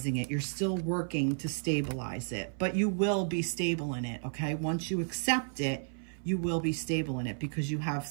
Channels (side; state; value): left; silent; 56 dB below the other